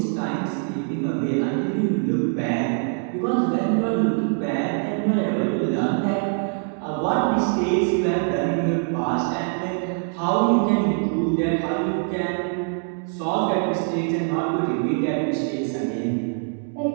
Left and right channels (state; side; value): silent; left; 55 dB below the other